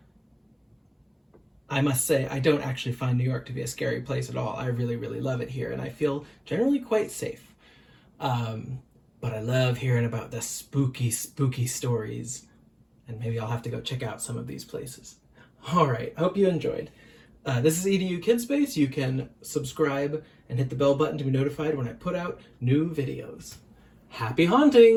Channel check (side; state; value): both; identical; correlation 1.00